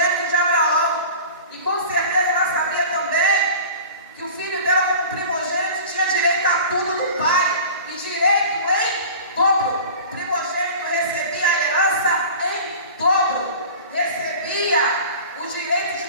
de Abraão. E com certeza ela sabia também que o filho dela, como primogênito, tinha direito a tudo do pai, e direito em dobro. O primogênito recebia a herança em dobro, recebia o direito de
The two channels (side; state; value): both; inverted; correlation -0.38